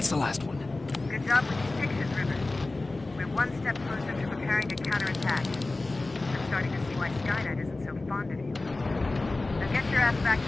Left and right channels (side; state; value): right; quieter; 3.1 dB